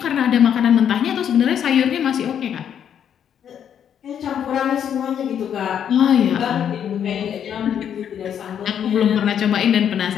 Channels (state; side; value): quieter; right; 8.9 dB